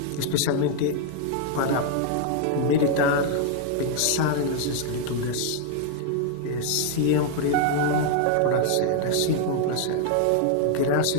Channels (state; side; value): different; both; correlation 0.00